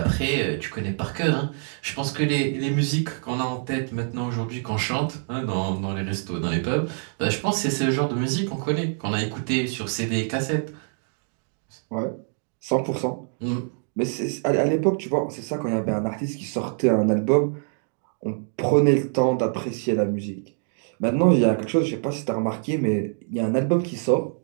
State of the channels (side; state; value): left; silent; 62 dB below the other